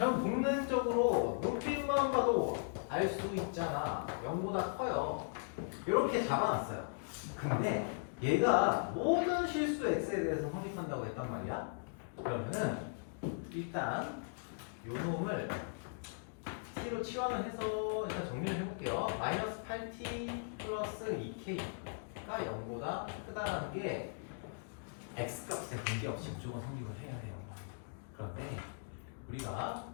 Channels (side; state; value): right; silent; digital silence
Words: 복면적으로 눈빛만 봐도 알 수 있잖아. 0보다 커요. 이렇게 잡아놨어요. 근데 얘가 모든 실수 x에 대해서 성립한다고 했단 말이야. 그러면은 일단 요 놈을 t로 치환을 해서 일단 정리를 해볼게요. 마이너스 8t 플러스 2k가 0보다 크다라는 게 x값에 관계없이 무조건 성립을 해야 돼요. 그런데 우리가